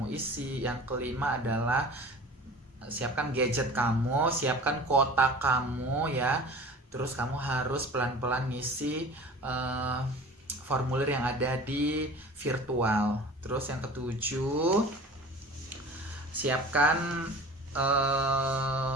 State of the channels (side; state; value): both; normal; correlation 0.41